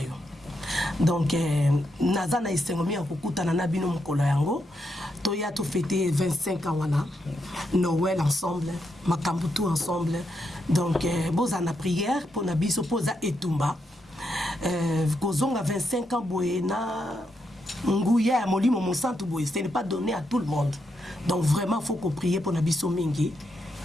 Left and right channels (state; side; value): normal; both; correlation 0.82